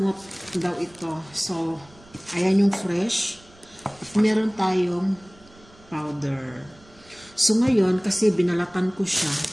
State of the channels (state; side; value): noise; right; rumble, 26 dB below the sound